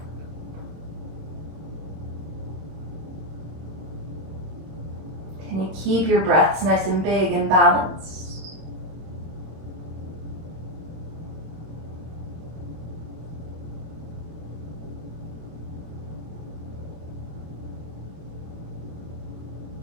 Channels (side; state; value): left; late; 26 ms